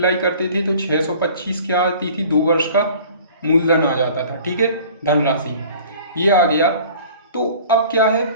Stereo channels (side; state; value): both; inverted; correlation -0.47